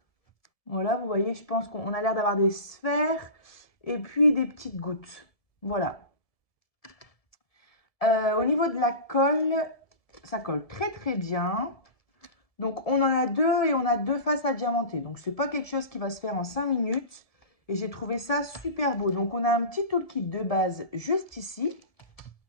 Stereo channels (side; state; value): right; late; 1.7 ms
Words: Voilà, vous voyez, je pense qu'on a l'air d'avoir des sphères et puis des petites gouttes. Voilà. Au niveau de la colle, ça colle très très bien. Donc on en a deux et on a deux faces à diamanter. Donc c'est pas quelque chose qui va se faire en 5 minutes. Et j'ai trouvé ça super beau. Donc on a un petit toolkit de base juste ici.